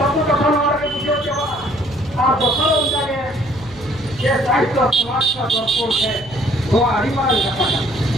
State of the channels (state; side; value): noise; right; hum, 21 dB below the sound